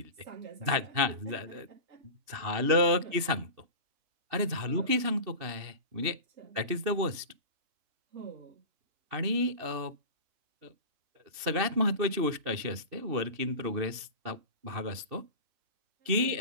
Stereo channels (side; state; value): left; late; 2.7 ms